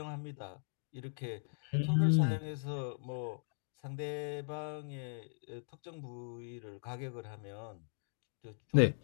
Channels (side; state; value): right; silent; digital silence